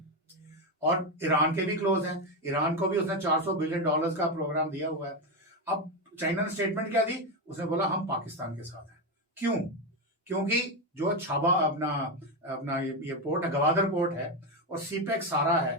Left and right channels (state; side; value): normal; both; correlation 0.11